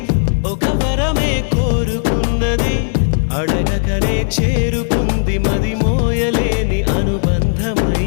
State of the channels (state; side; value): silent; right; digital silence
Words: ఒక వరమే కోరుకున్నది అడగకనే చేరుకుంది మది మోయలేని